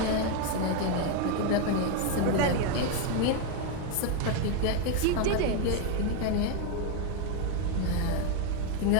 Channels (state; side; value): different; both; correlation 0.01